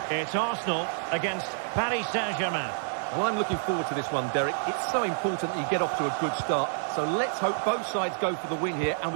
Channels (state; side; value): silent; left; digital silence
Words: It's Arsenal against Paris Saint-Germain. Well, I'm looking forward to this one, Derek. It's so important that you get off to a good start. So let's hope both sides go for the win here and